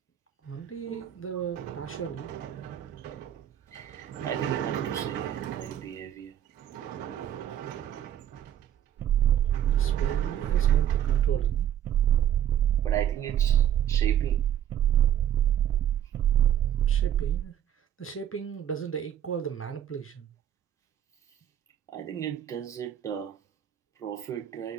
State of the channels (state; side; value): quieter; left; 10.5 dB